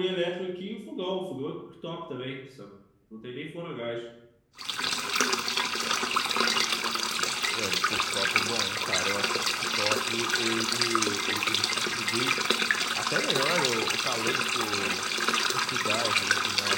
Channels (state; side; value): identical; both; correlation 1.00